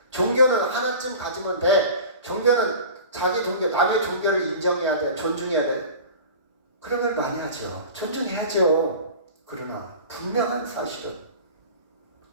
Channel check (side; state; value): both; inverted; correlation -0.37